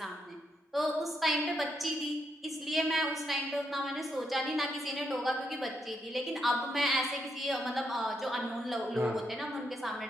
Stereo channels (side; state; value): both; normal; correlation 0.79